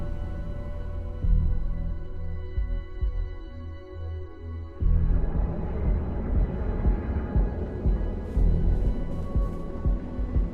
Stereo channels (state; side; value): identical; both; correlation 1.00